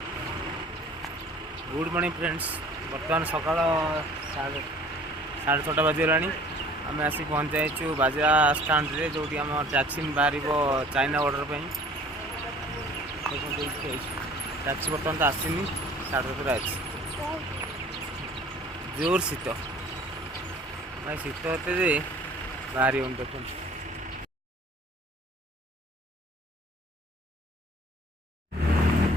good morning friends. बर्तमान सकाल 6:30 बजगला आम आसी पहुँच जाइए बाजा स्टाण्ड रे जो आम टैक्सी बाहर चाइना बॉर्डर पर टैक्सी बर्तमान तो आसनी 7:30 अच्छी जोर शीत भाई शीत होते बाहरी देखो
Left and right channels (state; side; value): normal; both; correlation 0.50